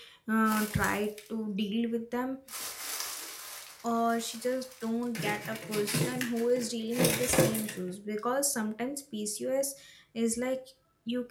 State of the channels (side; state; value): both; identical; correlation 1.00